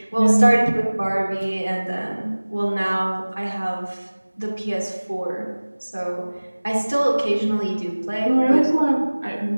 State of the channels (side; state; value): both; inverted; correlation -1.00